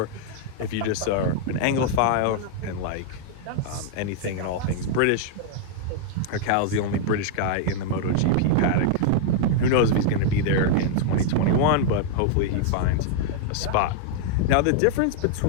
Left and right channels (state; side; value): different; both; correlation -0.01